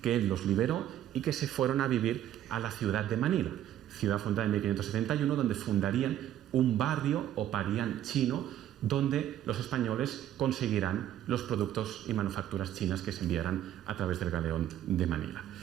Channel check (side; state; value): left; quieter; 11.6 dB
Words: que él los liberó y que se fueron a vivir a la ciudad de Manila, ciudad fundada en 1571, donde fundarían un barrio o parián chino, donde los españoles conseguirán los productos y manufacturas chinas que se enviarán a través del galeón de Manila.